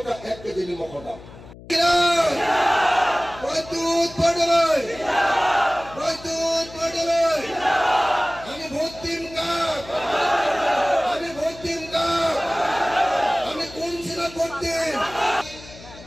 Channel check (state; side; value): noise; left; hum, 18 dB below the sound